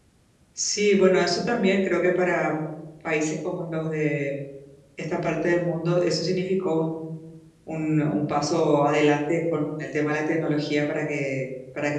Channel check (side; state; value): both; identical; correlation 1.00